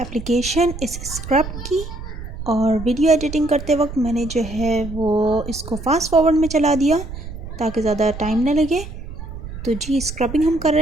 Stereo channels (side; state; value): right; noise; rumble, 10 dB below the sound